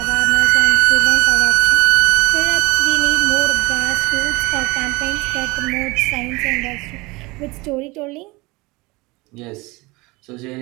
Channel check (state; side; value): quieter; left; 23.6 dB